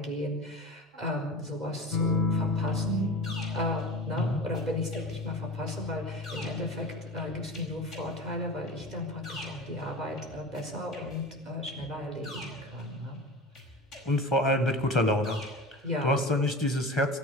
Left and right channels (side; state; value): both; normal; correlation 0.32